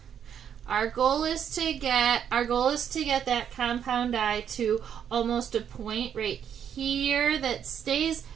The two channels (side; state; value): left; quieter; 8.6 dB